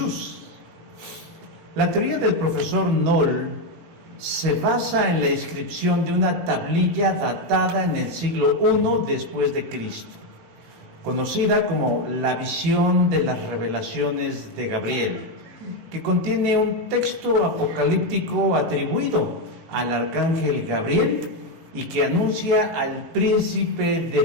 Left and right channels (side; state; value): left; late; 18 ms